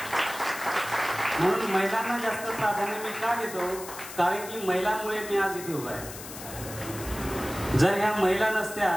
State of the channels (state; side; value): noise; left; hiss, 12 dB below the sound